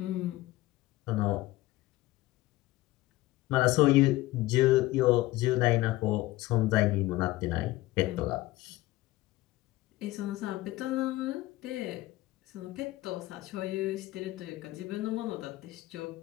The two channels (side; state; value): right; quieter; 17.9 dB